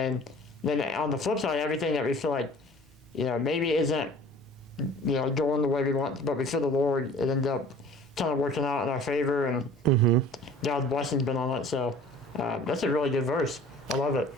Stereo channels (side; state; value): both; normal; correlation 0.46